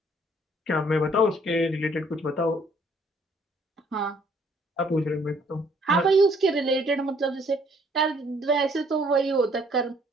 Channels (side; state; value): both; normal; correlation 0.63